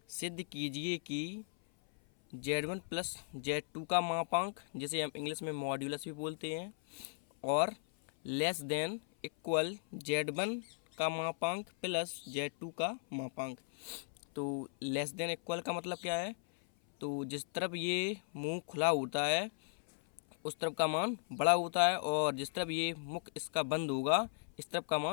सिद्ध कीजिए कि Z1 प्लस Z2 का मापांक, जिसे हम इंग्लिश में मॉड्यूलस भी बोलते हैं, और लेस देन इक्वल Z1 का मापांक प्लस Z2 का मापांक। तो लेस देन इक्वल का मतलब क्या है? तो जिस तरफ ये मुंह खुला होता है उस तरफ का मान बड़ा होता है, और जिस तरफ ये मुख इसका बंद होगा इस तरफ का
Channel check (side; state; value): right; silent; 53 dB below the other